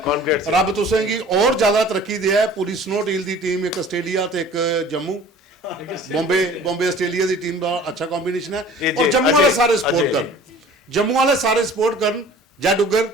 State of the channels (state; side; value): normal; both; correlation 0.47